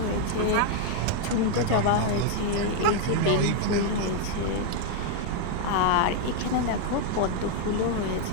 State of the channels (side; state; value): both; different; correlation 0.00